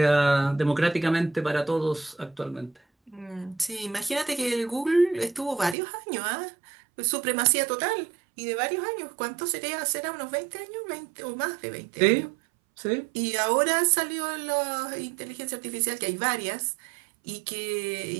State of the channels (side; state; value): left; drops out; at 5.8 s